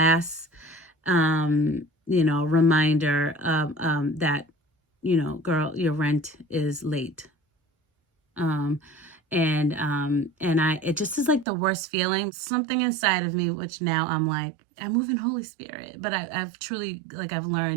reminder of that, girl, your rent is late. Um, and it just is like the worst feeling. Something inside of me, which now I'm like, I move in Holy Spirit, but I've truly like I've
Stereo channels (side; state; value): left; drops out; at 11.5 s